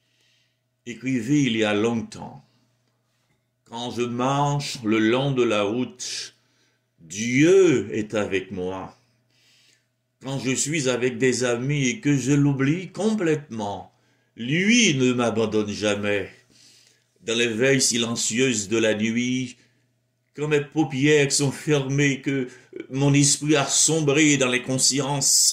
écrivait il y a longtemps: quand je marche le long de la route, Dieu est avec moi. Quand je suis avec des amis et que je l'oublie complètement, lui ne m'abandonne jamais. Dans les veilles silencieuses de la nuit, quand mes paupières sont fermées, que mon esprit a sombré dans les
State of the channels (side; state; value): both; identical; correlation 1.00